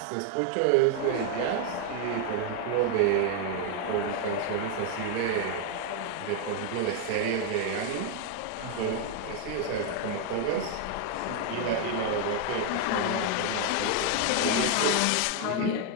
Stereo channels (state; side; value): different; both; correlation 0.00